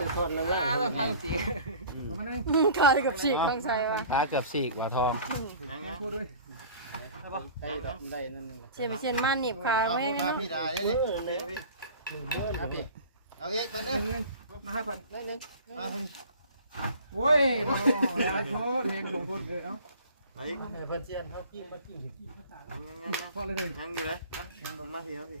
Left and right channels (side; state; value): both; inverted; correlation -0.43